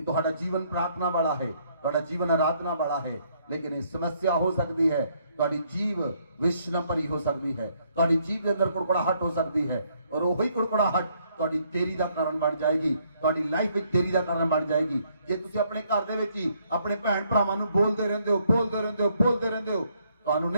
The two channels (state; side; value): inverted; both; correlation -0.69